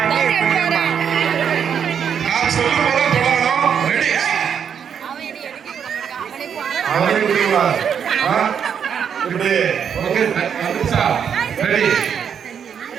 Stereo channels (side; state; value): left; quieter; 7.7 dB